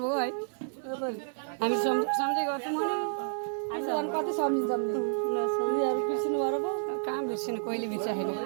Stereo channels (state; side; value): silent; left; 58 dB below the other